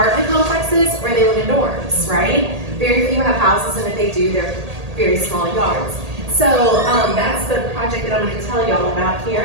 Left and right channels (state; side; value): late; left; 1.8 ms